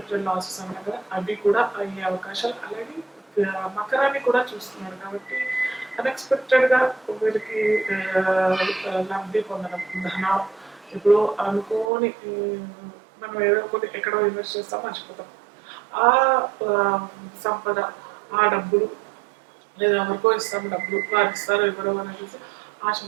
లాసెస్ అన్నారు కదా, అవి కూడా అయ్యే అవకాశాలు. అలాగే మకరాన్ని కూడా చూస్తున్నాడు కాబట్టి అన్ఎక్స్పెక్టెడ్గా వీరికి లబ్ధి పొందడం, ధనం ఇప్పుడు అనుకోని మనం ఏదో ఒకటి ఎక్కడో ఇన్వెస్ట్ చేస్తాం మర్చిపోతాం. ఆ సంపద, ఆ డబ్బులు, లేదా ఎవరికో ఇస్తాం డబ్బులు, వారు ఇస్తారో ఎవరో అని చూసి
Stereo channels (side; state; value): left; drops out; at 11.9 s